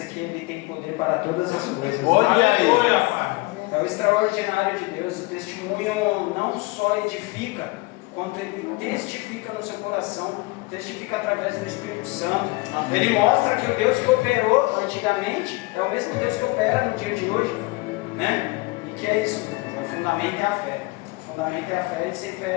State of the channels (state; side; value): quieter; right; 23.7 dB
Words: que Ele tem poder para todas as coisas. Olha aí. É o extraordinário de Deus. O testemunho não só edifica, quanto ele testifica no seu coração, testifica através do Espírito Santo. Amém. Ele mostra que o Deus que operou antigamente é o mesmo Deus que opera no dia de hoje, né? E que é isso, o fundamento é a fé. O fundamento é a fé, e sem